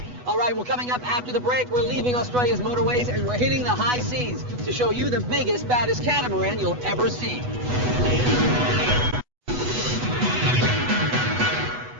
All right, well, coming up after the break, we're leaving Australia's motorways and we're hitting the high seas to show you the biggest, baddest catamaran you'll ever see.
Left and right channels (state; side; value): late; left; 8.1 ms